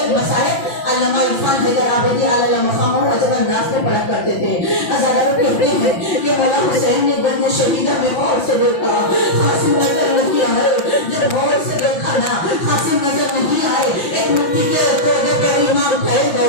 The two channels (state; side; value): late; right; 5.7 ms